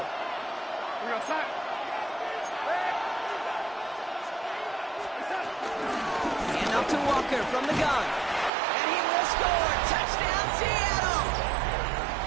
We're outside. Hand off to Walker from the gun. And he will score. Touchdown, Seattle!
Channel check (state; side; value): drops out; left; at 8.5 s